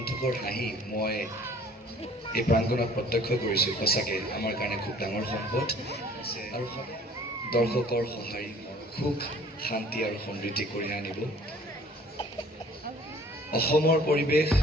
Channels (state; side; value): normal; both; correlation 0.53